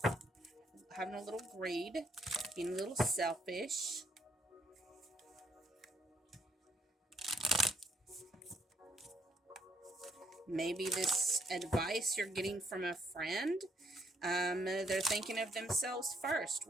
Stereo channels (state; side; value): normal; both; correlation 0.70